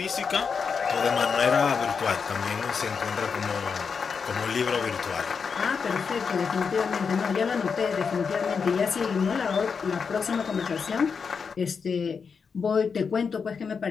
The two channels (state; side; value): quieter; right; 5.8 dB